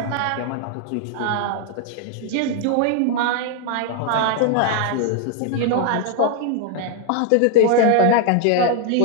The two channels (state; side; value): different; both; correlation 0.00